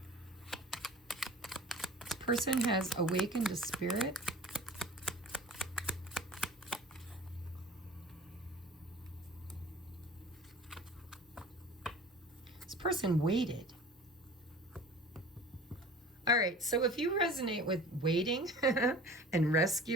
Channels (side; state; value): both; normal; correlation 0.42